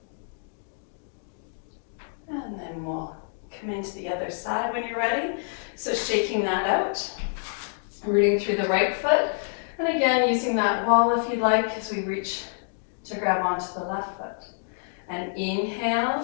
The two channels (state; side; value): silent; right; digital silence